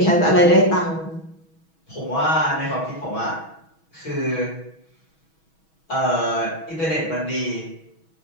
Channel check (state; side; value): late; right; 6.2 ms